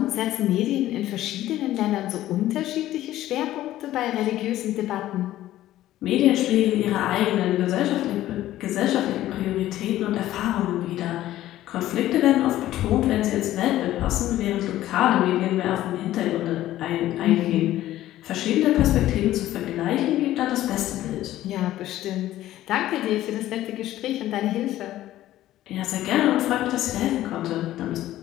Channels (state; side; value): quieter; right; 14.2 dB